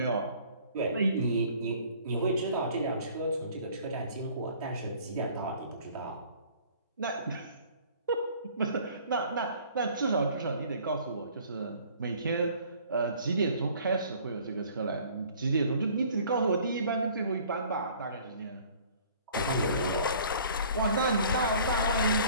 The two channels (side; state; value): both; inverted; correlation -0.53